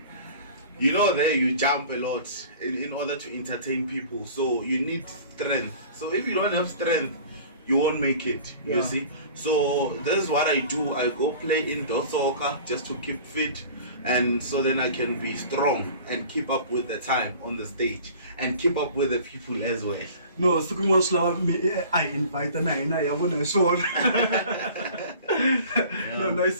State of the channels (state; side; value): inverted; both; correlation -0.44